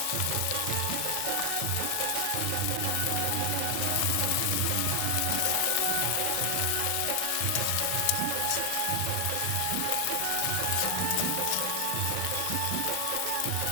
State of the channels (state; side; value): different; both; correlation 0.00